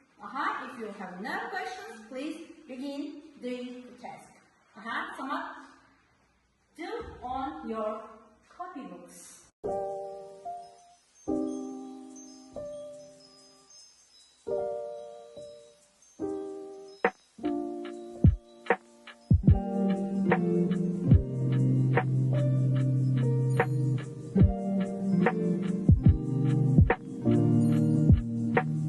If you have no questions, please begin doing the task. Samad, do on your copybooks.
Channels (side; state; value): both; identical; correlation 1.00